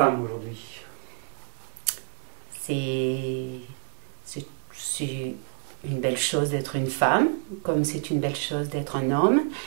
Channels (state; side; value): silent; left; digital silence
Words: aujourd'hui? C'est c'est une belle chose d'être une femme, comme c'est une belle chose d'être un homme.